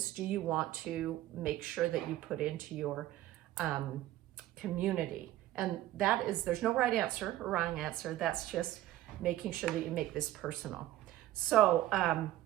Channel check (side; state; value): left; quieter; 14.7 dB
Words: do you want to make sure that you put into your community? And that is, there's no right answer or wrong answer. That's just making sure that you make this personal. So